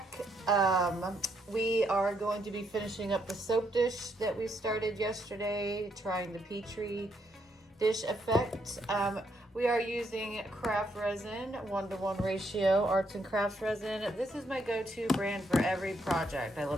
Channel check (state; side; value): normal; both; correlation 0.75